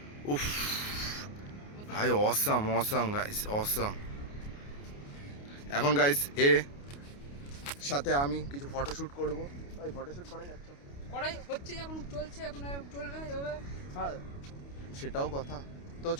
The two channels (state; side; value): late; right; 28 ms